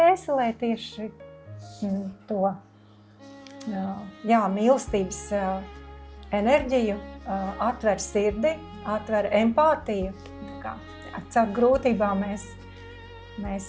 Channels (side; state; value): both; identical; correlation 1.00